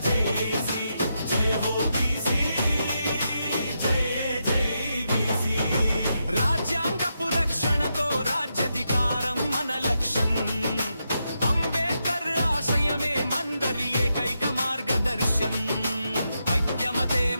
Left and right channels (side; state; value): both; inverted; correlation -0.84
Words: జేసి జయ హో బీసీ జై జై బీసీ రాజ్యాంగపు రక్షణతో రాజ్యాధికారం మన లక్ష్యం అంబేద్కర్ ఆశయమే మందరి ఏకైక మార్గదర్శం ఐక్యమతే